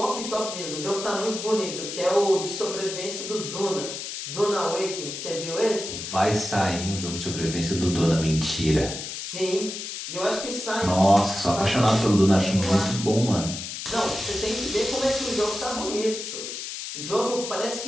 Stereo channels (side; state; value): left; noise; hiss, 7 dB below the sound